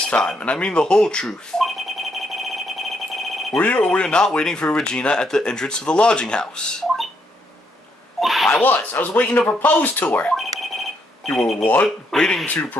time, and I mean the whole truth. Were you or were you not waiting for Regina at the entrance to the lodging house? I was waiting to propose to her. You were what? Waiting to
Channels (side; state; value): both; normal; correlation 0.75